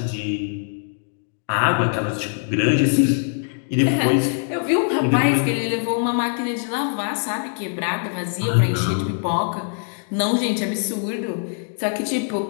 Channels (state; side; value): silent; right; digital silence